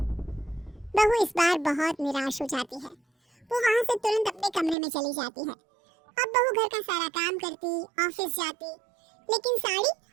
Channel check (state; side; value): drops out; left; at 4.8 s